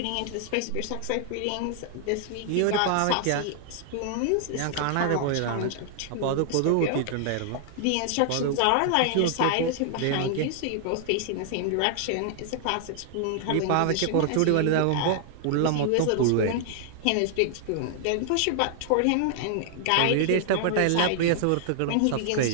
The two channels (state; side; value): different; both; correlation 0.00